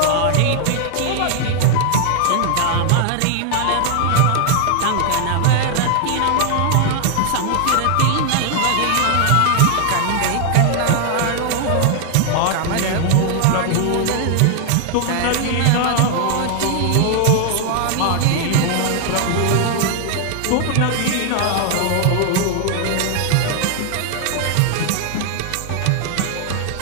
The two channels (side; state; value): both; different; correlation 0.00